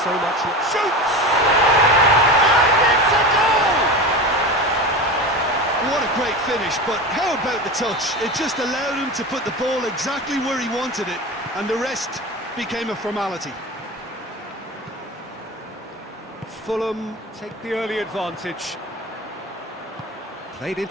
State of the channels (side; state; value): both; normal; correlation 0.27